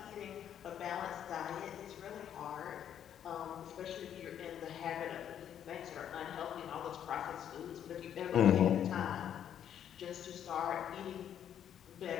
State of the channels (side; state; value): right; quieter; 9.6 dB